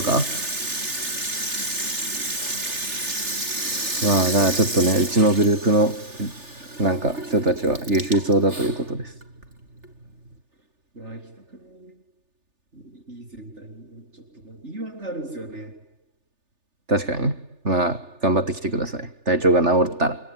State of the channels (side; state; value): left; late; 3.4 ms